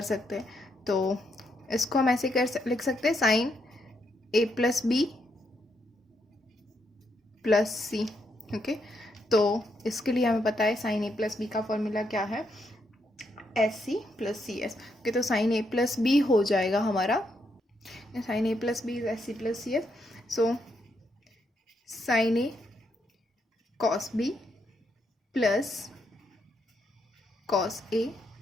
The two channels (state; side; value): normal; both; correlation 0.78